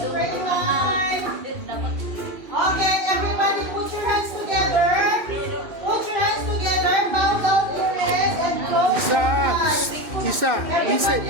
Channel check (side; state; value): left; late; 2.7 ms